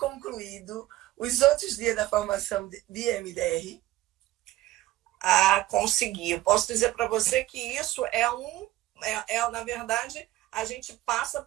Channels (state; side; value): quieter; left; 16.4 dB